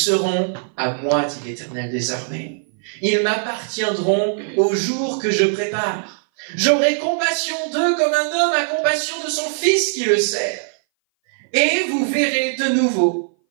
à moi, dit l'Éternel des armées. Ils m'appartiendront au jour que je prépare. J'aurai compassion d'eux comme un homme a compassion de son fils qui le sert. Et vous verrez de nouveau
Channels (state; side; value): silent; left; 60 dB below the other